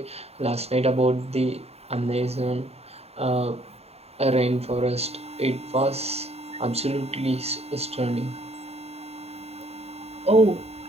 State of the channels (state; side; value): late; left; 0.30 ms